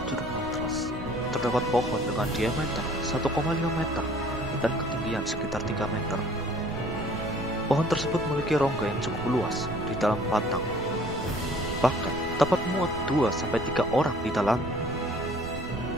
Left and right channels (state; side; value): noise; right; rumble, 11 dB below the sound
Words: Curug Mantras terdapat pohon dengan diameter 1,5 meter dan ketinggian sekitar 3 meter. Pohon tersebut memiliki rongga yang cukup luas di dalam batang, bahkan dapat muat 2-3 orang di dalamnya.